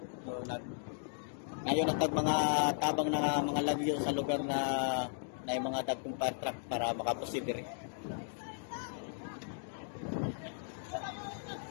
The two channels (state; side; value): silent; right; digital silence